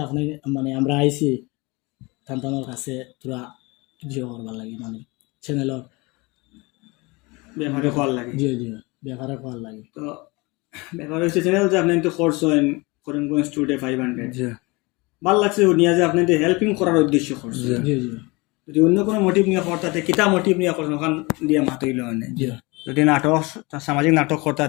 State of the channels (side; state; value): right; quieter; 25.3 dB